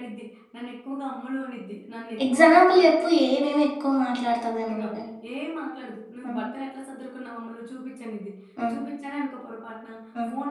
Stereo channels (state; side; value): identical; both; correlation 1.00